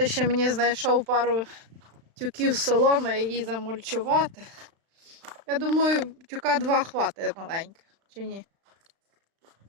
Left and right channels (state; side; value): late; left; 36 ms